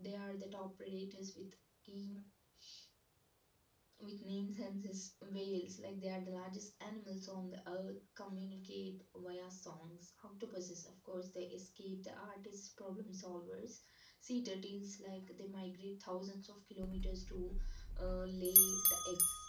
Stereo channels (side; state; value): both; identical; correlation 1.00